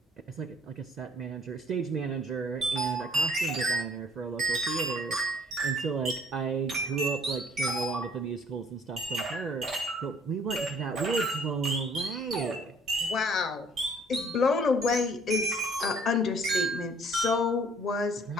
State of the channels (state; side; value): normal; both; correlation 0.59